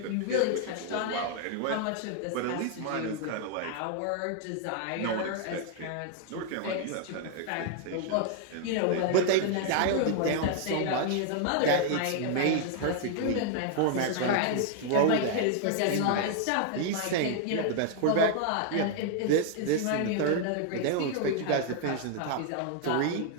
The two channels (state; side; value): different; both; correlation 0.00